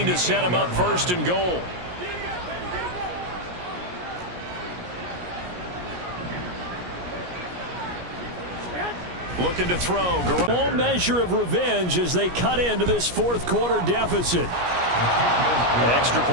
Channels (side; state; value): left; late; 17 ms